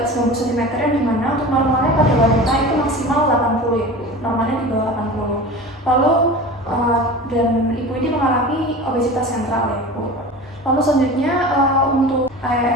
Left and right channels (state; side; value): normal; both; correlation 0.34